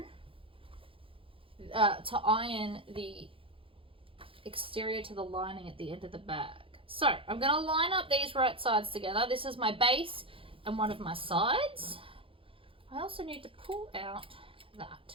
to iron the exterior to the lining at the end of the bag. So I'm going to line up these right sides together. This is my base and one of my sides. I also need to pull out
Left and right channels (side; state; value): left; late; 0.26 ms